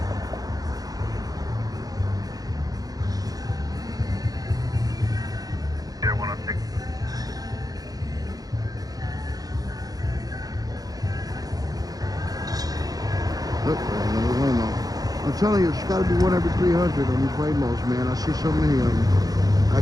telling you, it's got to be 1 every 300 on these Waymos, man. I see so many of them.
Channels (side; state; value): left; late; 0.18 ms